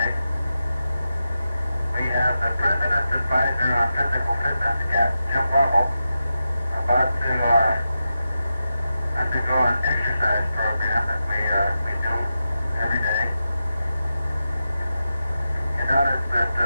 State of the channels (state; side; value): inverted; both; correlation -0.89